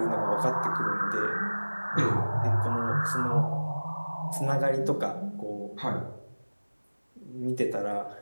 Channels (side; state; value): both; inverted; correlation -1.00